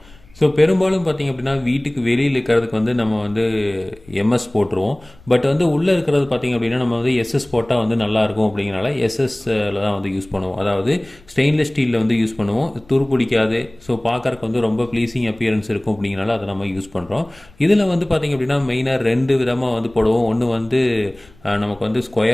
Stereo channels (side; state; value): left; noise; rumble, 26 dB below the sound